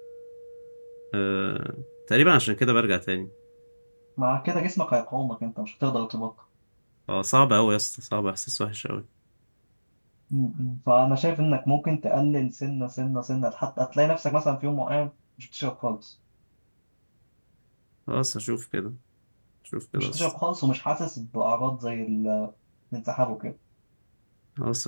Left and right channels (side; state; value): both; inverted; correlation -1.00